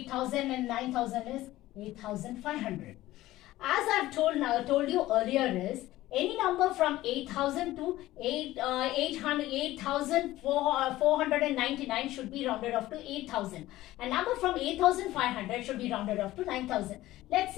and 9,000 is 8,500. As I've told you earlier is, any number from 8,000 to 8,499 should be rounded off to 8,000. A number from 8,500 should be rounded off to 9,000. Let's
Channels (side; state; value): right; quieter; 16.2 dB